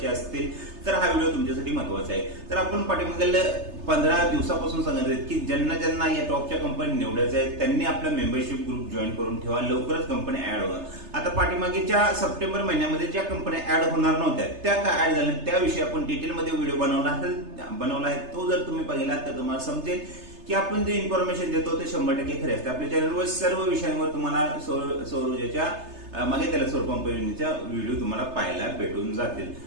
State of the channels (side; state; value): left; late; 3.3 ms